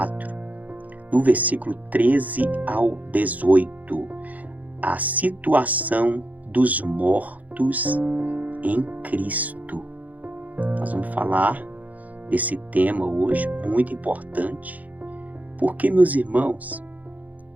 do versículo 13 ao 18. A situação dos mortos em Cristo. Nós vamos falar desse tema hoje, muito importante, porque, meus irmãos,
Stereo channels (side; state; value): left; late; 0.078 ms